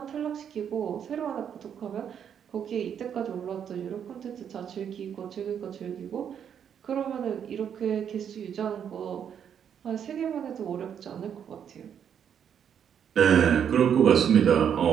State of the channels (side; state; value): left; quieter; 8.4 dB